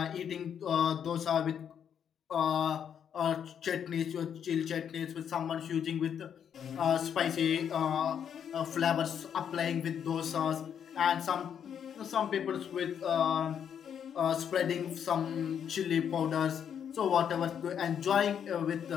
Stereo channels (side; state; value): right; quieter; 8.3 dB